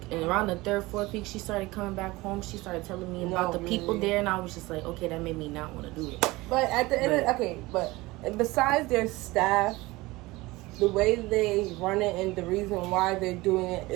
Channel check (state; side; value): quieter; left; 20.9 dB